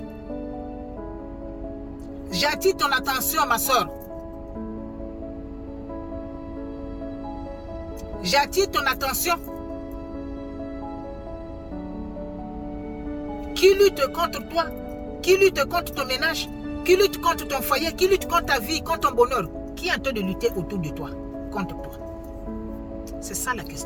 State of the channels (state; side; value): identical; both; correlation 1.00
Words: J'attire ton attention, ma soeur. J'attire ton attention. Qui lutte contre toi? Qui lutte contre ton ménage? Qui lutte contre ton foyer? Qui lutte contre ta vie, contre ton bonheur? Qui est en train de lutter autour de toi, contre toi? C'est ça la